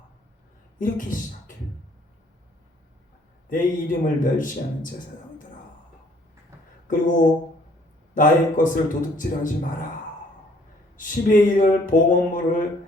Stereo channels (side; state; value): both; normal; correlation 0.61